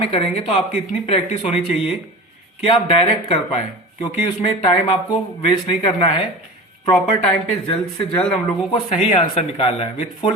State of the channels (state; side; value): normal; both; correlation 0.33